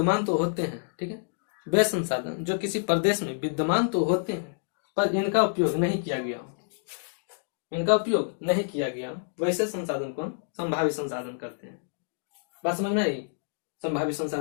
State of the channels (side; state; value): right; silent; digital silence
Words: तो होते हैं, ठीक है, वे संसाधन जो किसी प्रदेश में विद्यमान तो होते हैं पर इनका उपयोग नहीं किया गया, वैसे संसाधन को हम संभावी संसाधन करते हैं। बात समझ में आई? संभावी